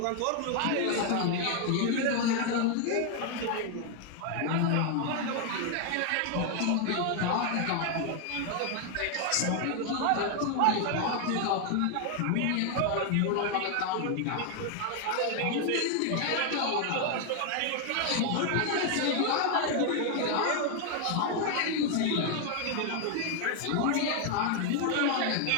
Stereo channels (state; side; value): different; both; correlation 0.01